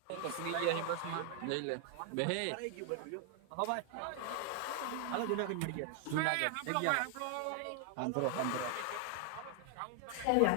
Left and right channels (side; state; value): both; different; correlation 0.00